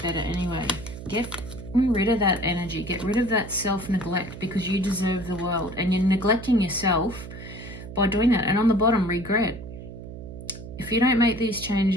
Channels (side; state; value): right; noise; hum, 12 dB below the sound